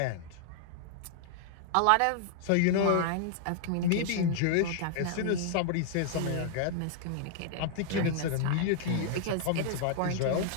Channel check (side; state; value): both; different; correlation -0.01